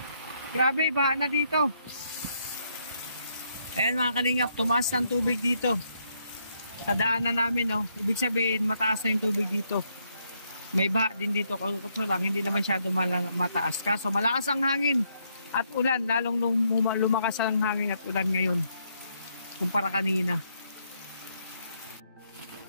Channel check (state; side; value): inverted; both; correlation -0.75